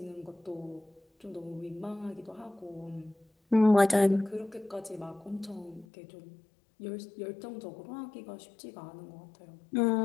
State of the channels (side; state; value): right; drops out; at 5.9 s